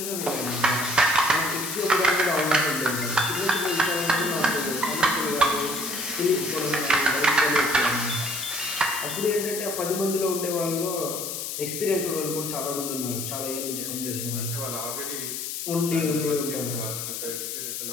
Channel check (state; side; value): noise; left; hiss, 5 dB below the sound